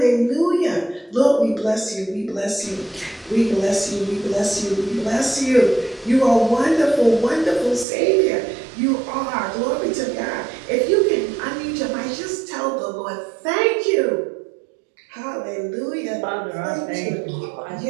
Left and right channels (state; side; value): drops out; left; at 7.9 s